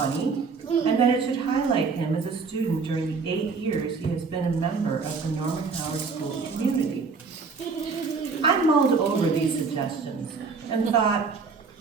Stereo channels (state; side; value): quieter; left; 4.8 dB